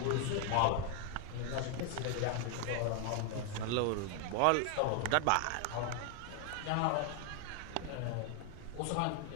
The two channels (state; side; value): different; both; correlation 0.00